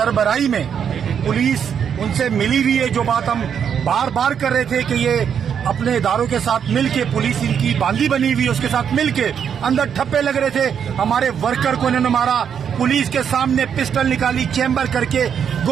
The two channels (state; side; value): quieter; left; 7.9 dB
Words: में, पुलिस उनसे मिली हुई है। जो बात हम बार बार कर रहे थे कि ये अपने इदारों के साथ मिलके, पुलिस इनकी बांदी बनी हुई है, उसके साथ मिलके अंदर ठप्पे लग रहे थे। हमारे वर्कर को इन्होंने मारा, पुलिस के सामने पिस्टल निकाली, चैम्बर करके